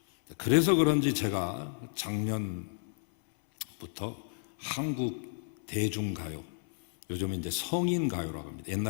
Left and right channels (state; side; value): silent; right; 56 dB below the other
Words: 그래서 그런지 제가 작년부터 한국 대중가요, 요즘은 이제 성인가요라고 합니다.